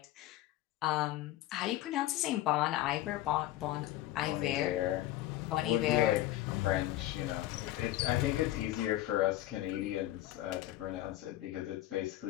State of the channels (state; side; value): quieter; right; 15.1 dB